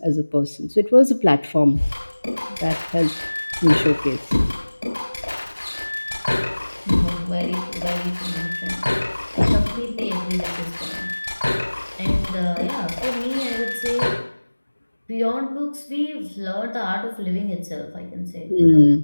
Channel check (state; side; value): inverted; both; correlation -1.00